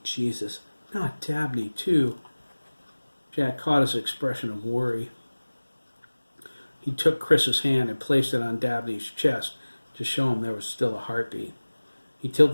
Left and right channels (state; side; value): inverted; both; correlation -1.00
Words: Jesus, not Dabney, too." Jack caught his expression of worry. He took Chris's hand and placed it on Dabney's chest to show him there was still a heartbeat. He